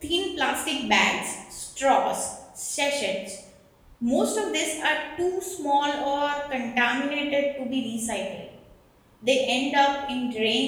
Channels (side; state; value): both; identical; correlation 1.00